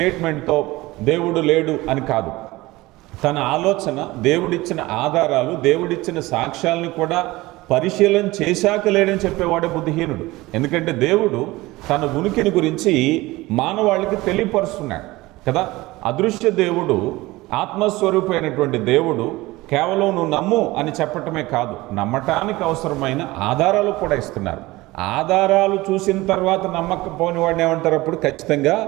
దేవుడు లేడు అని కాదు. తన ఆలోచన, దేవుడిచ్చిన ఆధారాలు, దేవుడిచ్చిన సాక్ష్యాలను కూడా పరిశీలన చేశాక లేడని చెప్పేవాడే బుద్ధిహీనుడు. ఎందుకంటే దేవుడు తన ఉనికిని గురించి మానవాళికి తెలియపరుస్తున్నాడు కదా. అదృశ్య దేవుడు, ఆత్మస్వరూపమైనటువంటి దేవుడు కేవలం నువ్వు నమ్ము అని చెప్పటమే కాదు, నమ్మటానికి అవసరమైన ఆధారాలు కూడా ఇస్తున్నారు. ఆధారాలు చూసిన తర్వాత నమ్మకపోని వాడిని ఏమంటారు? అప్పుడు ఖచ్చితంగా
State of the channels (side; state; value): left; quieter; 19.9 dB